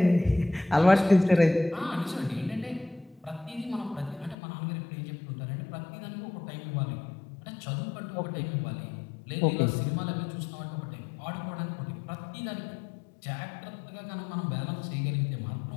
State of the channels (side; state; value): right; drops out; at 4.4 s